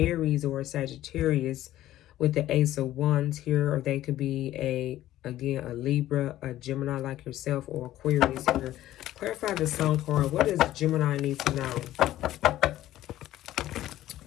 or a Sagittarius with the Ace of Wands here, or they could be again, a Libra, a Gemini like yourself, or Aquarius here. Clarify the Sun card. What does Gemini need to know?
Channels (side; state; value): right; quieter; 14.1 dB